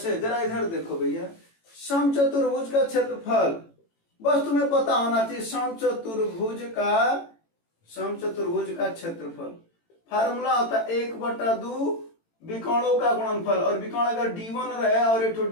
जरा इधर देखो भैया, समचतुर्भुज का क्षेत्रफल बस तुम्हें पता होना चाहिए, समचतुर्भुज का क्षेत्रफल फार्मूला होता है 1/2 विकोणों का गुणनफल, और विकोण अगर D1 रहे और एक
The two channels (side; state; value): right; late; 18 ms